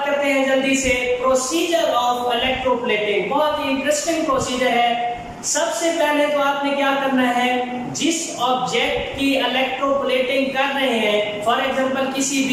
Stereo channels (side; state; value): both; identical; correlation 1.00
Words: करते हैं जल्दी से प्रोसीजर ऑफ इलेक्ट्रोप्लेटिंग। बहुत ही इंटरेस्टिंग प्रोसीजर है। सबसे पहले तो आपने क्या करना है, जिस ऑब्जेक्ट की इलेक्ट्रोप्लेटिंग कर रहे हैं, फॉर एग्जांपल किसी